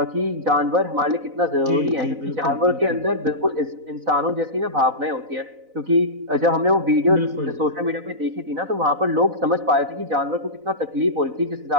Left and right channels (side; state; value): left; late; 4.0 ms